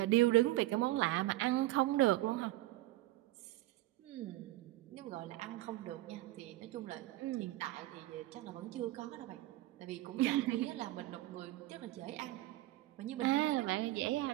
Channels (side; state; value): left; quieter; 16.9 dB